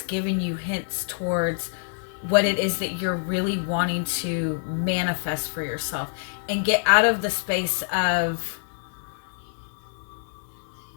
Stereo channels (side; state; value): right; silent; 61 dB below the other